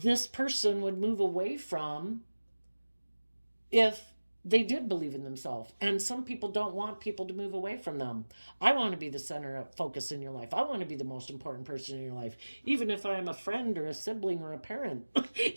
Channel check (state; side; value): inverted; both; correlation -1.00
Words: person would move away from if they did believe in themselves. And some people don't want people to move away from them. I want to be the center of focus in your life. I want to be the most important person in your life, even if I'm a friend or a sibling or a parent.